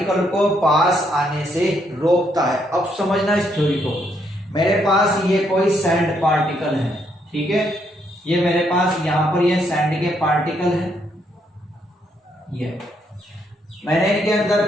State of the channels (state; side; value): normal; both; correlation 0.74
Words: को पास आने से रोकता है। अब समझना इस थ्योरी को, मेरे पास ये कोई सैंड पार्टिकल है। ठीक है, ये मेरे पास यहाँ पर ये सैंड के पार्टिकल है, ये मैंने इनके